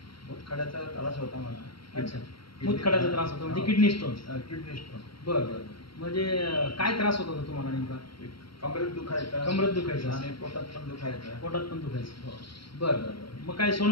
मुतखड्याचा त्रास होता मला. अच्छा. मुतखड्याचा त्रास होतो म्हणजे किडनी स्टोन. Kidney stone. बरं बरं. म्हणजे काय त्रास होत होता तुम्हाला नेमका? कमरेत दुखायचा. कमरेत दुखायचं आणि पोटात पण दुखायचा. पोटात पण दुखायचं. बरं बरं. मग काय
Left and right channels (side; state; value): right; late; 0.74 ms